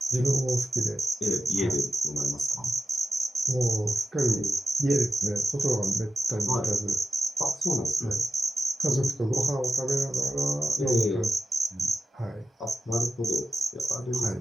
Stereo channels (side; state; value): both; normal; correlation 0.91